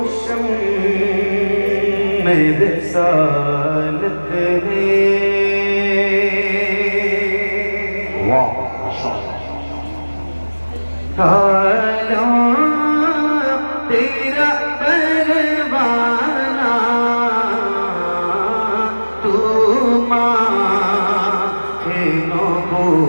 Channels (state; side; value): inverted; both; correlation -1.00